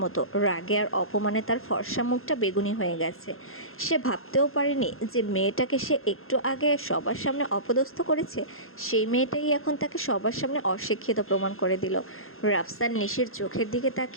মতো। রাগে আর অপমানে তার ফর্সা মুখটা বেগুনি হয়ে গেছে। সে ভাবতেও পারেনি যে মেয়েটাকে সে একটু আগে সবার সামনে অপদস্থ করেছে, সেই মেয়েটাই এখন তাকে সবার সামনে অশিক্ষিত প্রমাণ করে দিল। রাফসান নিশির চোখের দিকে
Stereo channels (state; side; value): late; right; 0.61 ms